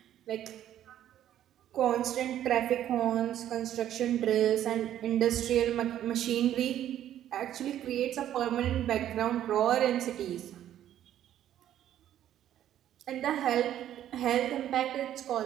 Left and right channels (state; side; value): quieter; left; 11.5 dB